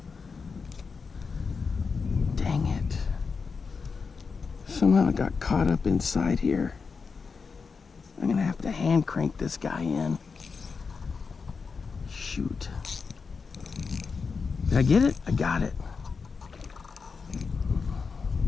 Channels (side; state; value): right; quieter; 5.1 dB